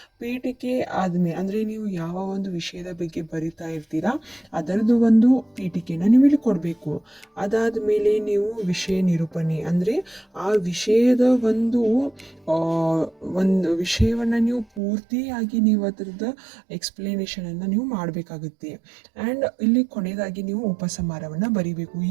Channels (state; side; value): drops out; left; at 14.8 s